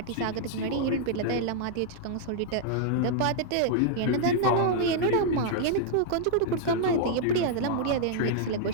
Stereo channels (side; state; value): both; different; correlation -0.01